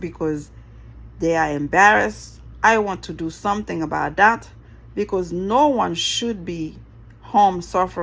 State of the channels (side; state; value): both; identical; correlation 1.00